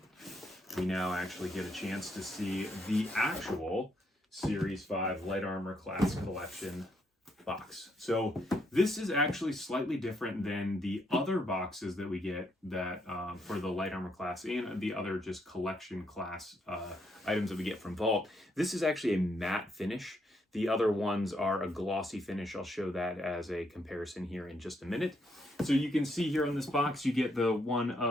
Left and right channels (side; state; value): both; normal; correlation 0.75